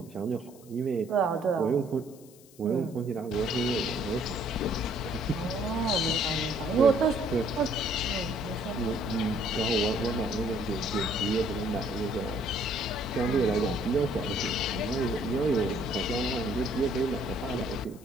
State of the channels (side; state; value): left; noise; hiss, 24 dB below the sound